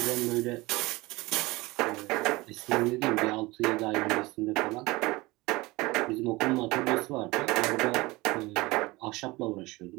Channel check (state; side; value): quieter; left; 21.8 dB